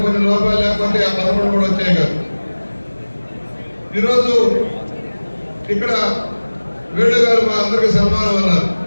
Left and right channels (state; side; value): inverted; both; correlation -1.00